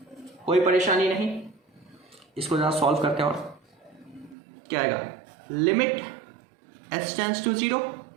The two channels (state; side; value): drops out; left; at 4.4 s